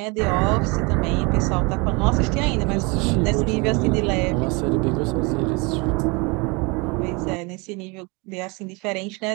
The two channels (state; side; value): quieter; left; 28.4 dB